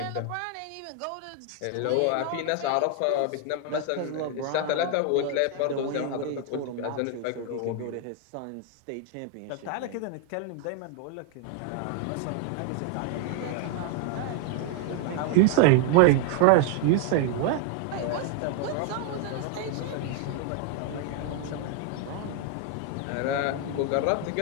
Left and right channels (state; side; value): different; both; correlation 0.01